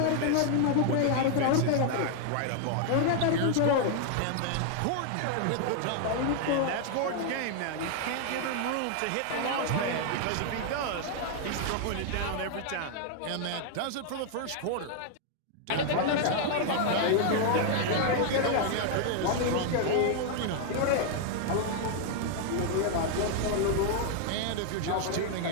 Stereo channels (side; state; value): both; different; correlation 0.00